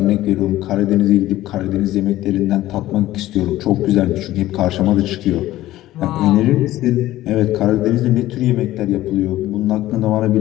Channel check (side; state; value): right; quieter; 15.3 dB